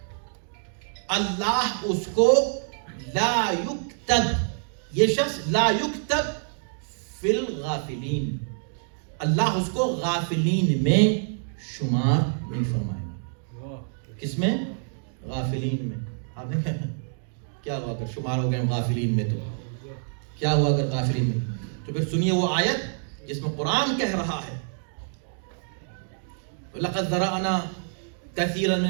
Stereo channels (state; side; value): silent; left; digital silence